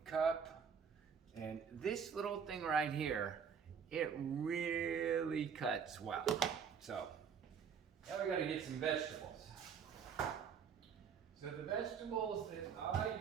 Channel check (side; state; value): left; quieter; 6.9 dB